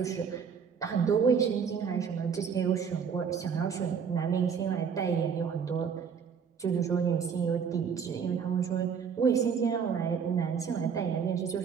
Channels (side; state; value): left; quieter; 6.7 dB